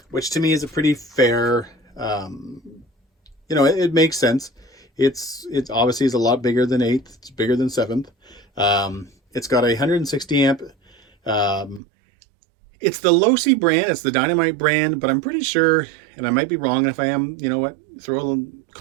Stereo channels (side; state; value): left; drops out; at 11.8 s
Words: which to me is a pretty fair, you know, it makes sense. It's obviously is a lot bigger than 8th. It's bigger than 7th. It's got a 160 amp. It's the Losi brand. It's the Dynamite brand, but I'm pretty sure, and I might be wrong. If I am, you know what, throw a